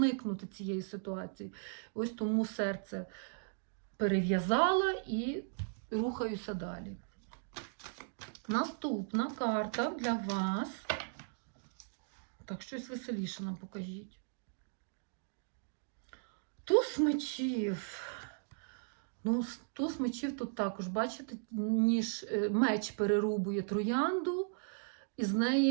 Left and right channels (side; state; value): left; silent; digital silence